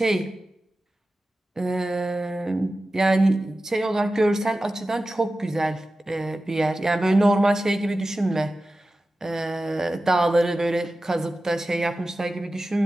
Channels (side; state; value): both; normal; correlation 0.94